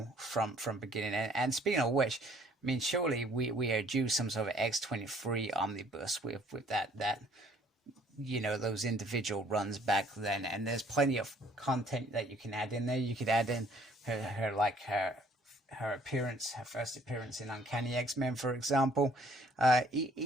from beginning. And speaking of which, I mean, surely we are due some sort of X-23 omnibus with that you know, those individual runs back then, and there's plenty of content that you can add in there. You could add in her appearance, her first appearance in Uncanny X-Men, for example.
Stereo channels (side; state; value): both; normal; correlation 0.59